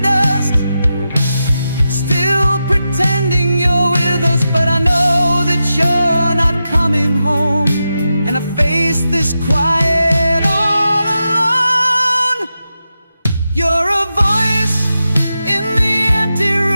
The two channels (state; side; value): inverted; both; correlation -0.89